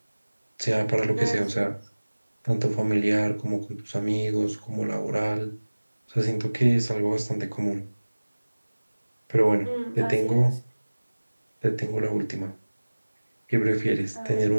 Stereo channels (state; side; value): inverted; both; correlation -1.00